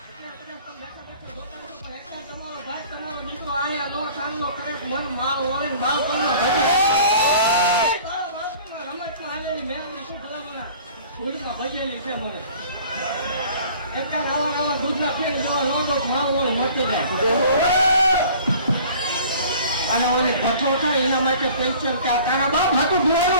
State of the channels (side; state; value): both; inverted; correlation -0.48